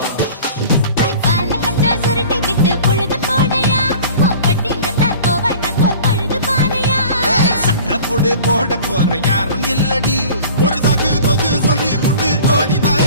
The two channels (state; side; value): inverted; both; correlation -0.43